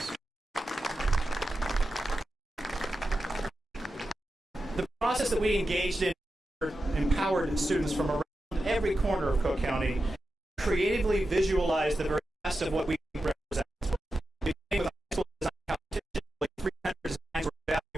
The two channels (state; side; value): normal; both; correlation 0.91